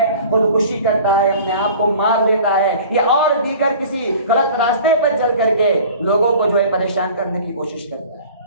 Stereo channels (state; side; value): inverted; both; correlation -0.44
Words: خودکشی کرتا ہے، اپنے آپ کو مار دیتا ہے، یا اور دیگر کسی غلط راستے پر چل کر کے لوگوں کو جو ہے پریشان کرنے کی کوشش کرتا ہے۔